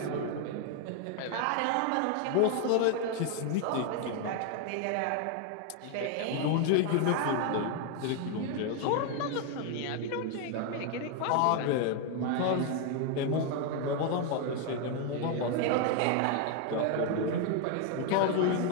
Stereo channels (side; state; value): both; different; correlation 0.01